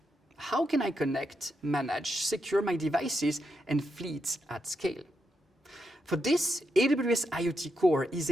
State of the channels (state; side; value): normal; both; correlation 0.83